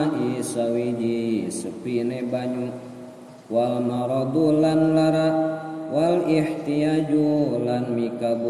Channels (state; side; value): identical; both; correlation 1.00